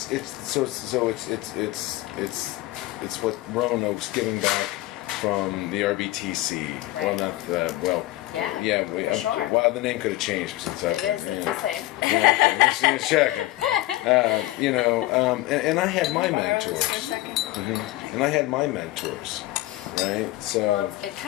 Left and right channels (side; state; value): right; quieter; 17.6 dB